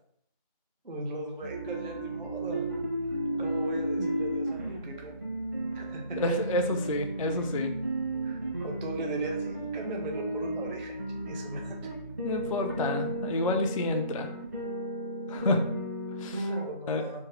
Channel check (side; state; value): both; inverted; correlation -0.50